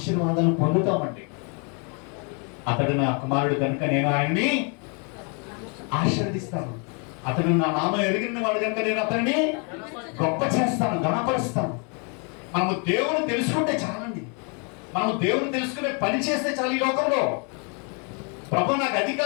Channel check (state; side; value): quieter; right; 36.4 dB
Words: పొందుతామండి. అతడు నా కుమారుడు కనుక నేను ఆయన్ని ఆశీర్వదిస్తాను, అతడు నా నామం ఎరిగిన వాడు కనుక నేను అతన్ని గొప్ప చేస్తాను, ఘనపరుస్తాను. మనము దేవుని తెలుసుకుంటే చాలండి. మనము దేవుని తెలుసుకునే పని చేస్తే చాలు. ఈ లోకంలో ప్రభు నాకు అది